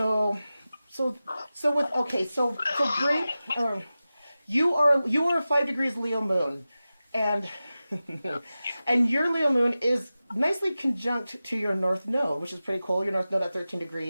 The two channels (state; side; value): inverted; both; correlation -0.95